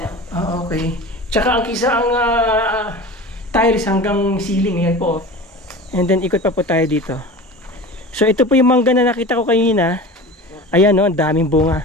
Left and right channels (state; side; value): normal; both; correlation 0.34